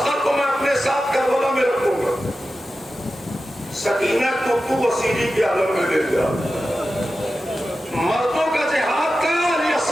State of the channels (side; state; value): both; normal; correlation 0.93